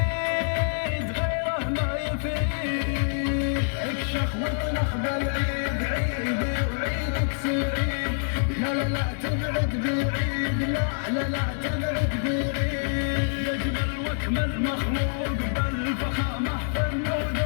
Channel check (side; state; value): right; silent; digital silence